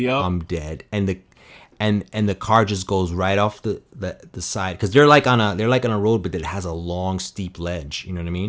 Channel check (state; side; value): identical; both; correlation 1.00